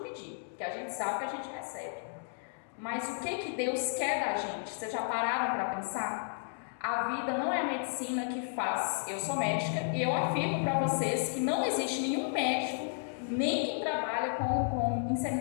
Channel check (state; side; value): silent; right; digital silence